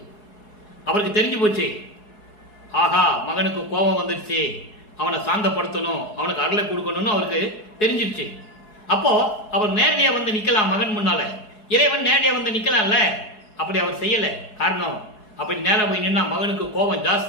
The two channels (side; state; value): right; late; 4.7 ms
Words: அவருக்கு தெரிஞ்சு போச்சு. ஆகா, மகனுக்கு கோபம் வந்துடுச்சு, அவனை சாந்தப்படுத்தணும், அவனுக்கு அருளை கொடுக்கணும்னு அவருக்கு தெரிஞ்சிடுச்சு. அப்போ அவர் நேரடியாக நிற்கலாம் மகன் முன்னால. இறைவன் நேரடியாக நிற்கலாம்ல, அப்படி அவர் செய்யலை. காரணம், அப்படி நேராக போய் நின்னா மகனுக்கு கோபம்